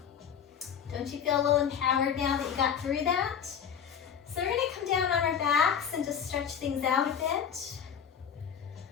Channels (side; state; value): right; quieter; 8.0 dB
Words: Don't you feel a little empowered now that you got through that? So we're gonna come down on our backs and just stretch things out a bit.